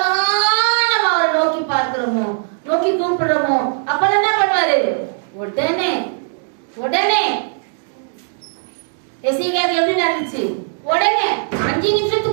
நம்ம அவரை நோக்கி பார்க்கிறோமோ, நோக்கி கூப்பிடுறோமோ, அப்பெல்லாம் என்ன பண்ணுவாரு? உடனே உடனே எசேக்கியாவுக்கு எப்படி நடந்துச்சு? உடனே 5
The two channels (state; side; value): silent; left; digital silence